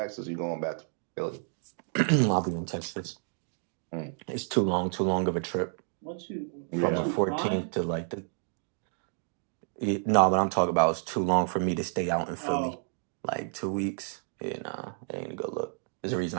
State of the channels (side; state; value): left; silent; 57 dB below the other